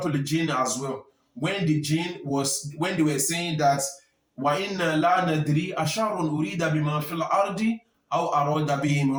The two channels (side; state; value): both; identical; correlation 1.00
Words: Al-Jinn as well. When they were saying that وَإِنَّ لَا نَدْرِي أَشَرٌ أُرِيدَ بِمَا فِي الْأَرْضِ أَوْ أَرَادَ بِهِمْ